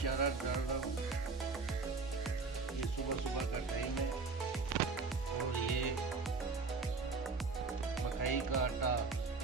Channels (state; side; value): quieter; left; 4.3 dB